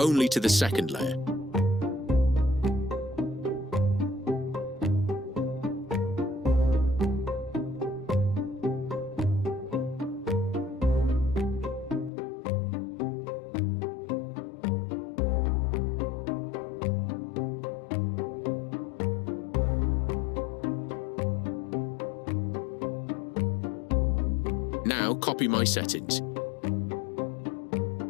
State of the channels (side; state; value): right; drops out; at 12.1 s